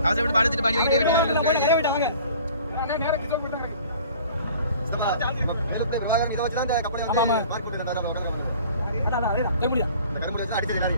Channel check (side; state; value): both; inverted; correlation -0.48